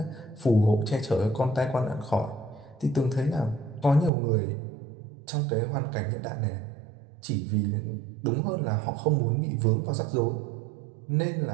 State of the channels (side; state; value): left; drops out; at 4.1 s